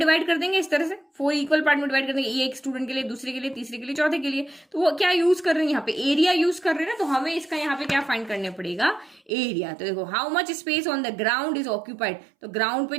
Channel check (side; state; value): left; drops out; at 9.3 s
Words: कर देंगे, इस तरह से 4 इक्वल पार्ट में डिवाइड कर देंगे, एक स्टूडेंट के लिए, दूसरे के लिए, तीसरे के लिए, चौथे के लिए। तो वो क्या यूज कर रहे हैं यहाँ पे, एरिया यूज कर रहे हैं ना, तो हमें इसका यहाँ पे क्या फाइंड करने पड़ेगा, एरिया। तो देखो how much space on the ground is occupied, तो ग्राउंड पे